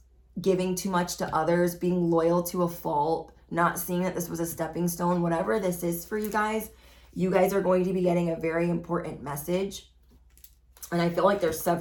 giving too much to others, being loyal to a fault, not seeing that this was a stepping stone, whatever this is for you guys are going to be getting a very important message. And I feel like there's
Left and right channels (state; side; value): identical; both; correlation 1.00